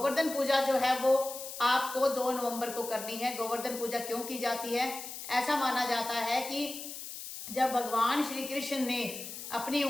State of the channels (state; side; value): noise; left; hiss, 9 dB below the sound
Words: पूजा जो है वो आपको 2 नवंबर को करनी है। गोवर्धन पूजा क्यों की जाती है? ऐसा माना जाता है कि जब भगवान श्री कृष्ण ने अपनी